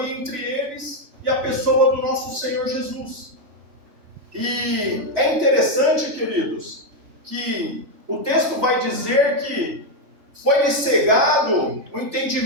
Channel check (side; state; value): left; late; 3.1 ms